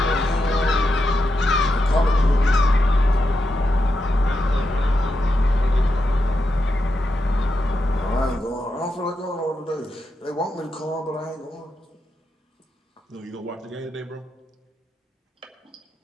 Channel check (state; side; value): normal; both; correlation 0.86